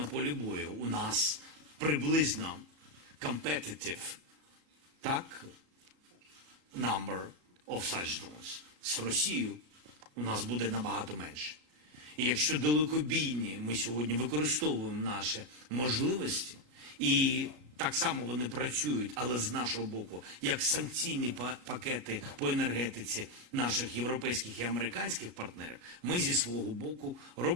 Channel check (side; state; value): left; late; 37 ms